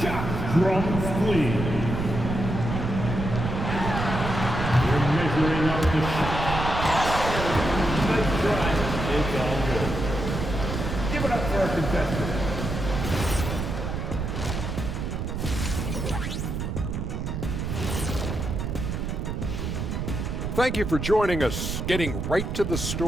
shot. Drums, please. Measuring up the shot. Nice try. It's all good. Give it up for our contestants. Thank you for joining us. Getting right to the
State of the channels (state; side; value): noise; right; rumble, 3 dB below the sound